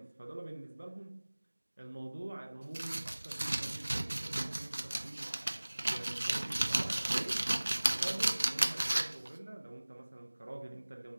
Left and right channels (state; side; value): inverted; both; correlation -1.00